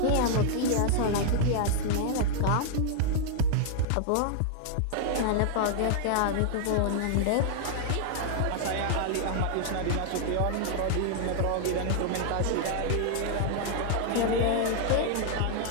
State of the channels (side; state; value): both; different; correlation 0.00